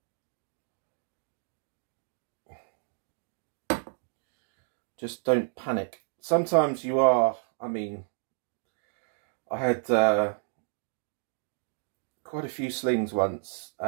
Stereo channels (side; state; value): left; silent; 57 dB below the other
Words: Just don't panic. Sometimes you are, I mean, I had quite a few slings once,